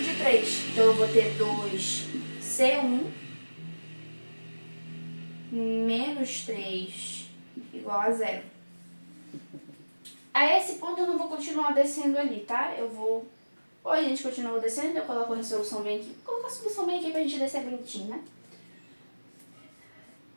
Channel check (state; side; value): inverted; both; correlation -1.00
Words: de 3. Então eu vou ter 2C1 menos 3 igual a 0. A esse ponto eu não vou continuar descendo ali, tá? Ou a gente continua descendo, eu coloco a resolução bem aqui. Vou colocar a solução bem aqui pra gente descer bonitinho, né?